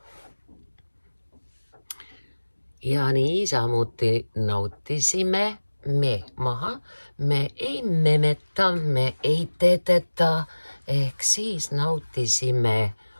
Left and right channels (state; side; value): inverted; both; correlation -1.00